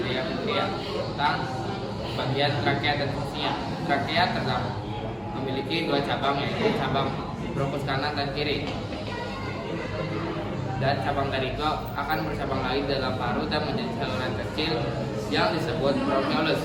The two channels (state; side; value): identical; both; correlation 1.00